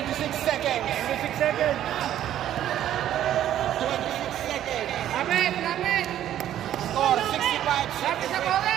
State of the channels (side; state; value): left; quieter; 11.6 dB